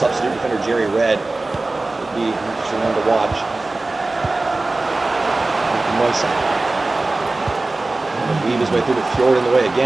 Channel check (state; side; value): quieter; left; 3.1 dB